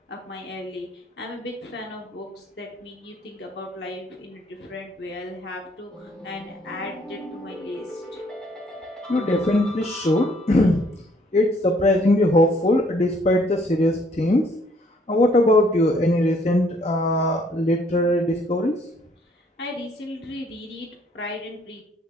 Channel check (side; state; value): both; normal; correlation 0.64